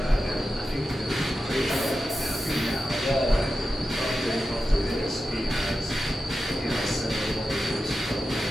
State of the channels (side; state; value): both; normal; correlation 0.91